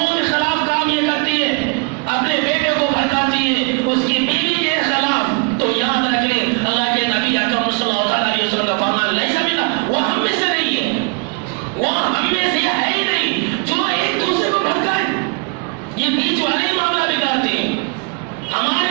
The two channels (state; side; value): quieter; left; 32.9 dB